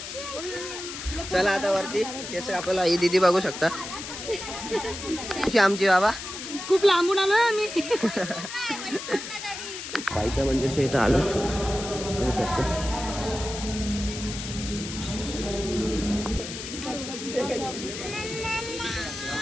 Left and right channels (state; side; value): noise; left; hiss, 8 dB below the sound